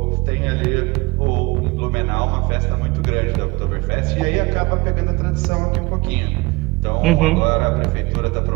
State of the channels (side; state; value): left; quieter; 23.7 dB